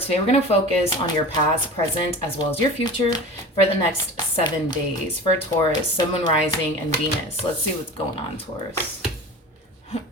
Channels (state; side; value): normal; both; correlation 0.35